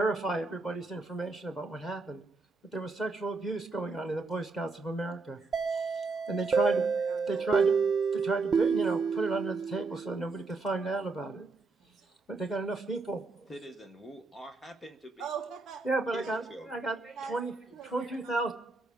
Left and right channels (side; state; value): left; quieter; 3.8 dB